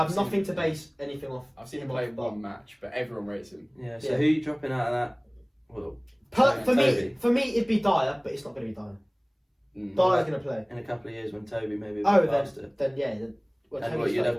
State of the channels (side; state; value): both; identical; correlation 1.00